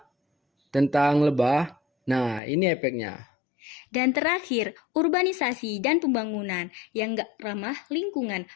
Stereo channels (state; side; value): drops out; right; at 2.4 s